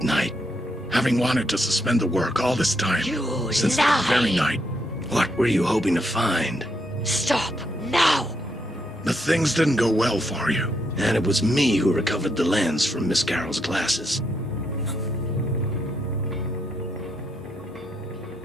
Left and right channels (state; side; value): normal; both; correlation 0.78